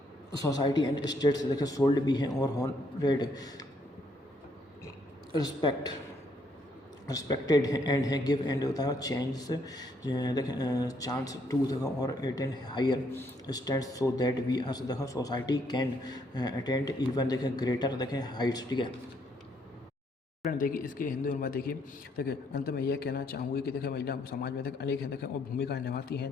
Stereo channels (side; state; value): both; normal; correlation 0.71